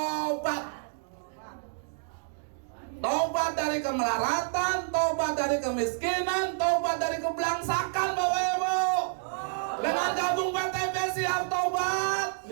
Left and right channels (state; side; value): silent; left; digital silence